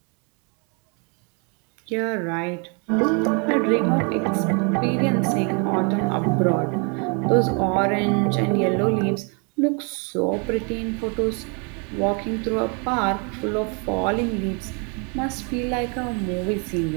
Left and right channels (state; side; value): quieter; left; 35.2 dB